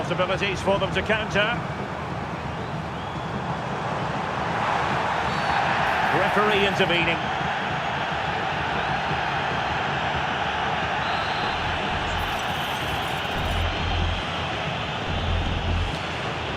for them to counter. Referee intervening.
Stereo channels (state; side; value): identical; both; correlation 1.00